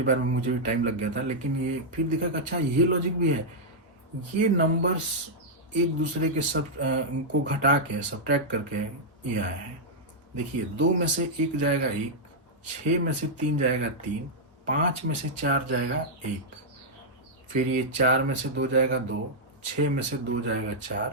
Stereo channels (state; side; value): normal; both; correlation -0.06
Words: बार में मुझे भी टाइम लग गया था, लेकिन ये फिर दिखा कि अच्छा ये लॉजिक भी है। ये नंबर्स एक दूसरे के सब को घटा के सब्ट्रैक्ट करके ये आए हैं। देखिए 2 में से 1 जाएगा 1, 6 में से 3 जाएगा 3, 5 में से 4 जाएगा 1, फिर ये 4 में से 2 जाएगा 2, 6 में से 2 जाएगा